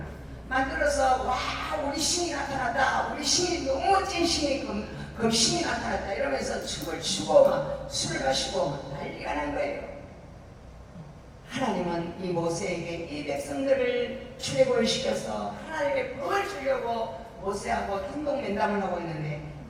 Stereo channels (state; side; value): identical; both; correlation 1.00